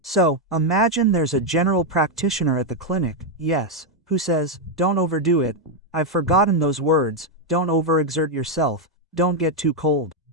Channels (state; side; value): normal; both; correlation 0.02